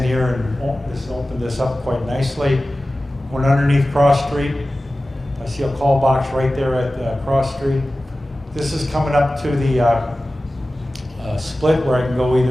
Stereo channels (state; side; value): normal; both; correlation 0.96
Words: here and just opened this up quite nicely. Went underneath Cross Street. I see a call box right there at Cross Street. This is coming up to the split where I can go